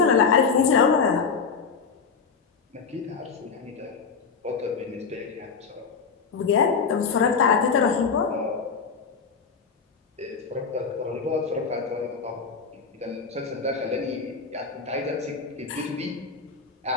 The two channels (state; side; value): quieter; right; 5.4 dB